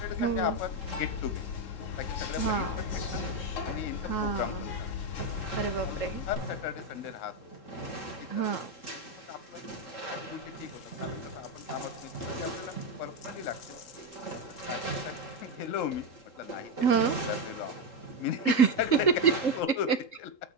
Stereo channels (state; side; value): late; right; 3.8 ms